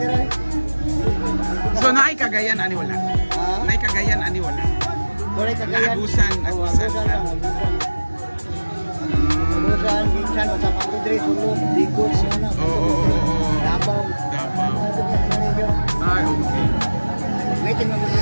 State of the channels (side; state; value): both; inverted; correlation -1.00